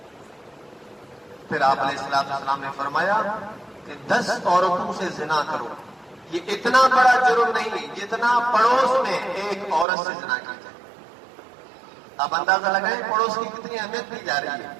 پھر آپ علیہ السلام نے فرمایا کہ 10 عورتوں سے زنا کرو، یہ اتنا بڑا جرم نہیں ہے جتنا پڑوس میں ایک عورت سے زنا کی جائے۔ آپ اندازہ لگائیں پڑوس کی کتنی اہمیت دی جا رہی ہے۔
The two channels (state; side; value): drops out; left; at 9.9 s